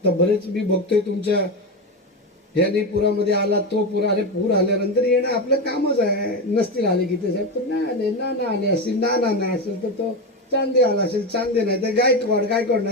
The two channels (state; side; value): normal; both; correlation 0.16